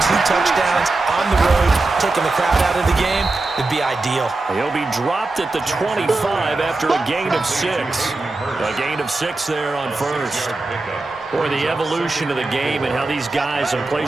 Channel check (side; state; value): left; quieter; 3.3 dB